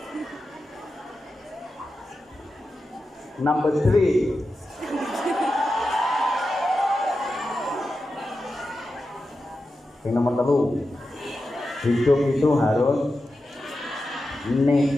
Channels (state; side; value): normal; both; correlation 0.91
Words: number 3. Yang nomor 3, hidup itu harus